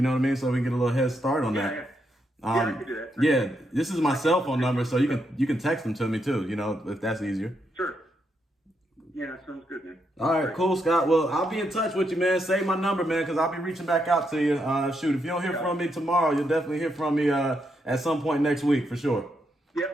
know what I mean? So we can get a little head start on that. Yeah. I can do that. Yeah, this is my cell phone number, so you can text them to me too. You know, if that's easier. Sure. Yeah, sounds good, man. All right, cool, Scott. Well, I'll be in touch with you, man. Save my number, man, because I'll be reaching back out to you. Shoot, if you don't hear from me tomorrow, you'll definitely hear from me at some point next week for sure.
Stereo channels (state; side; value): normal; both; correlation 0.80